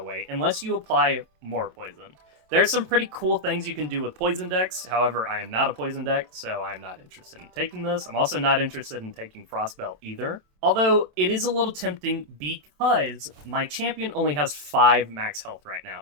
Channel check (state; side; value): late; left; 27 ms